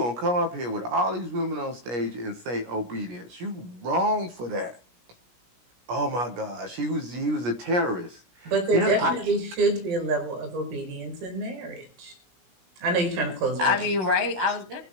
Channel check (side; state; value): left; late; 17 ms